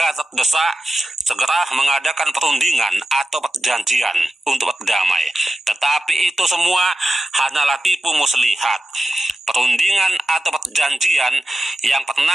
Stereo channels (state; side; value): normal; both; correlation 0.93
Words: terdesak, segera mengadakan perundingan atau perjanjian untuk berdamai. Tetapi itu semua hanyalah tipu muslihat. Perundingan atau perjanjian yang